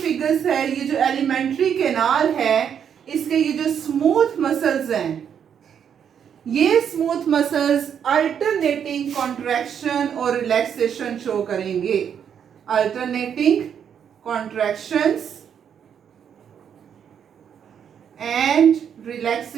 है, ये जो एलिमेंट्री कैनाल है, इसके ये जो स्मूथ मसल्स हैं, ये स्मूथ मसल्स अल्टरनेटिंग कॉन्ट्रैक्शन और रिलैक्सेशन शो करेंगे। Alternating contractions and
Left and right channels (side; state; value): left; quieter; 8.2 dB